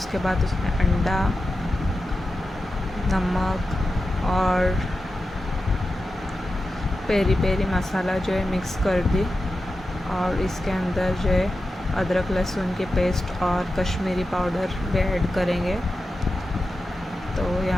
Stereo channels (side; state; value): both; normal; correlation 0.91